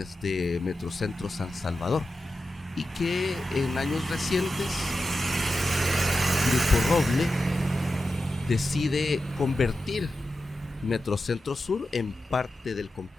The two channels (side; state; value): both; normal; correlation 0.91